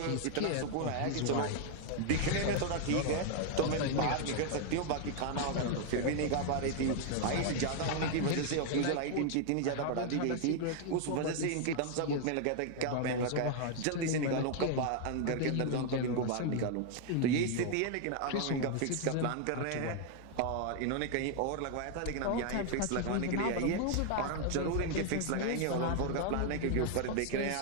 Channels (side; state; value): both; different; correlation 0.00